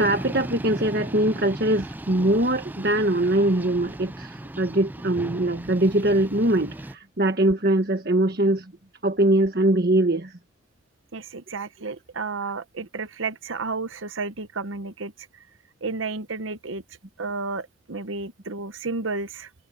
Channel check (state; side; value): normal; both; correlation 0.40